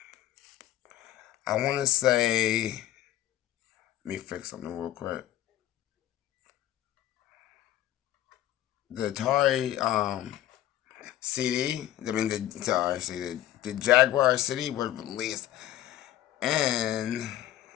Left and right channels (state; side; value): quieter; right; 13.3 dB